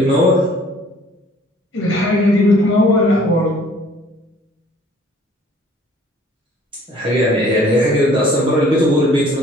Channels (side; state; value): both; normal; correlation 0.55